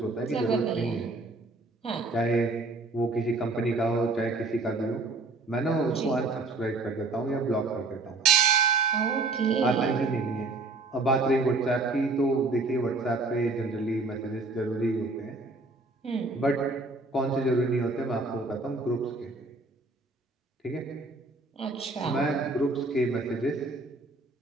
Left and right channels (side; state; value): left; quieter; 3.4 dB